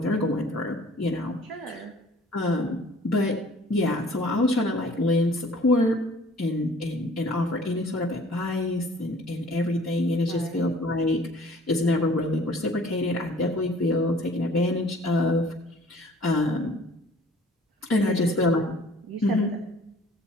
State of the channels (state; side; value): normal; both; correlation 0.52